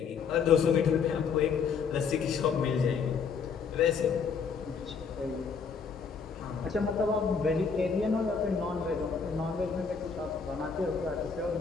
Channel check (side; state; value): right; quieter; 5.8 dB